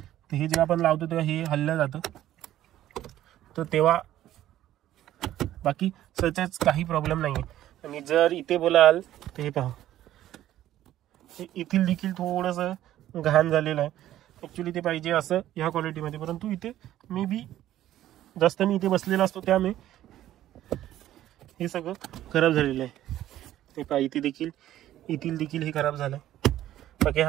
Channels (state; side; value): quieter; left; 13.1 dB